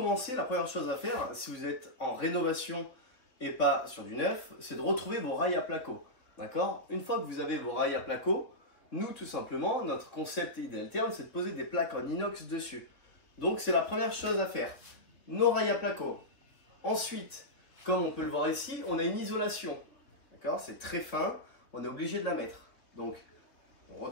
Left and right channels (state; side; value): late; right; 3.6 ms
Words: la première chose à faire, si vous êtes en rénovation et pas sur du neuf, c'est de retrouver vos rails à placo. D'accord? Une fois que vous avez vos rails à placo, nous tout simplement, notre concept Idealtherm, c'est de poser des plaques en inox dessus. Donc c'est la première chose à faire. Nos rails à placo. Ensuite, comme on peut le voir ici, on a une isolation. D'accord? C'est très fin, on est obligé de la mettre. Donc, on